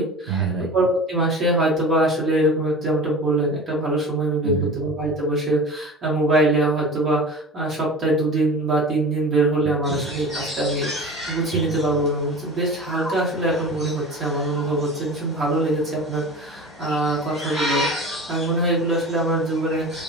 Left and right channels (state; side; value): normal; both; correlation 0.35